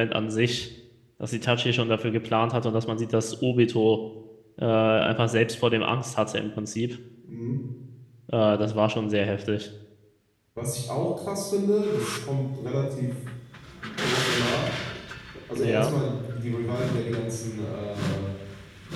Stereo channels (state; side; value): identical; both; correlation 1.00